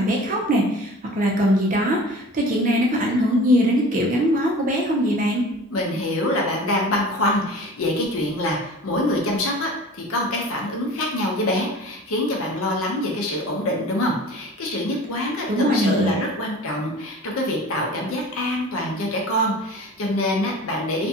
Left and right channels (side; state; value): both; normal; correlation 0.40